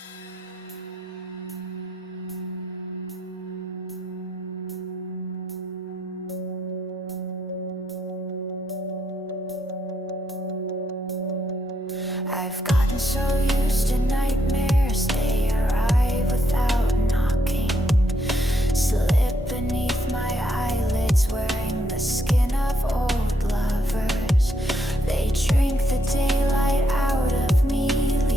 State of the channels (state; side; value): normal; both; correlation 0.76